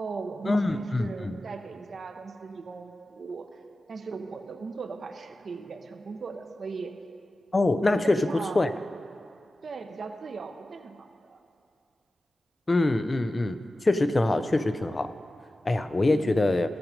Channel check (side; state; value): both; normal; correlation 0.94